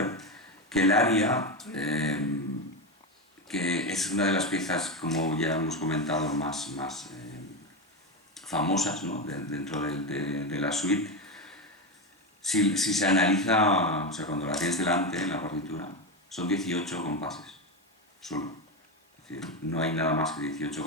que el aria, que es una de las piezas, como ya hemos comentado, más famosas, ¿no? Dentro de la suite. Si se analiza, o sea, cuando la tienes delante en la partitura, son 18 compases, solo. Es decir, no hay nada más que 18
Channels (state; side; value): normal; both; correlation 0.15